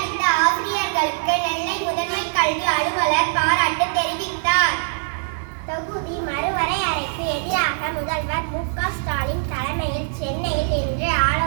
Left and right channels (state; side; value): silent; left; digital silence